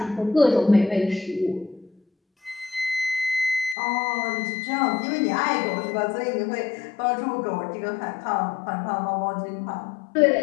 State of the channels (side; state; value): right; drops out; at 3.8 s